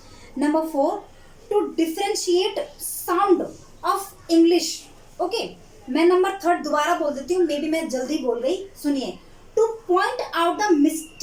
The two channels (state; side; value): identical; both; correlation 1.00